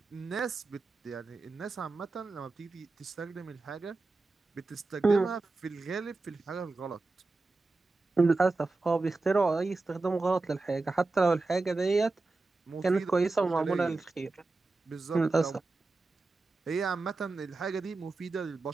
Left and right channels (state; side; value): quieter; left; 3.5 dB